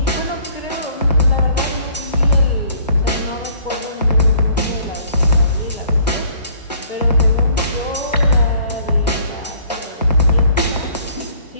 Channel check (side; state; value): both; inverted; correlation -0.57